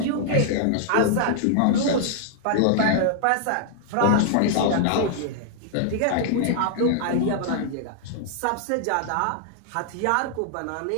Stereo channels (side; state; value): both; different; correlation -0.01